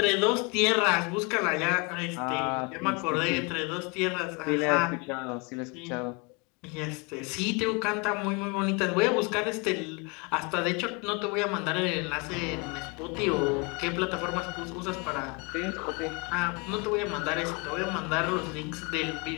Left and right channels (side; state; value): right; quieter; 30.0 dB